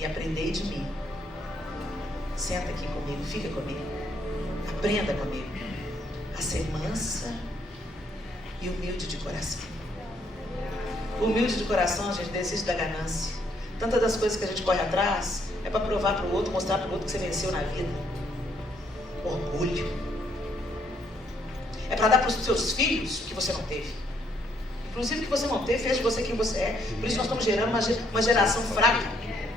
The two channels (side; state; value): both; normal; correlation 0.70